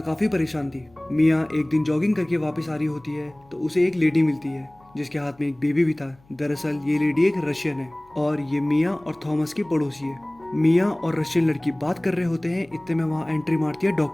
काफी परेशान थी। मिया एक दिन जॉगिंग करके वापस आ रही होती है तो उसे एक लेडी मिलती है जिसके हाथ में एक बेबी भी था। दरअसल ये लेडी एक रशियन है और ये मिया और थॉमस की पड़ोसी है। मिया और रशियन लड़की बात कर रहे होते हैं, इतने में वहाँ एंट्री मारती है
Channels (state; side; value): noise; left; hum, 30 dB below the sound